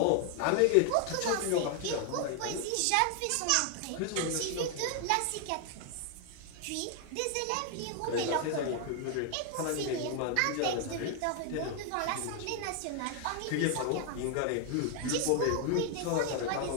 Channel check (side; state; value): both; different; correlation 0.00